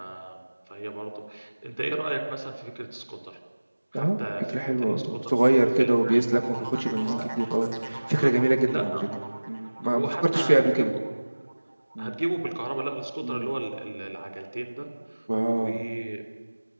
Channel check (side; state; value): both; inverted; correlation -1.00